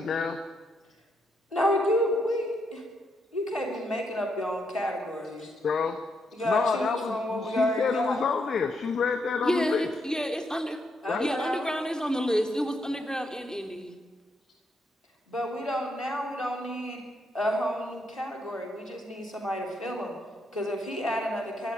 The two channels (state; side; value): normal; both; correlation 0.78